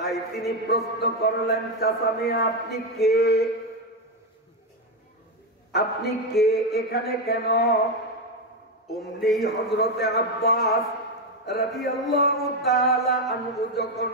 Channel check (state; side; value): normal; both; correlation 0.08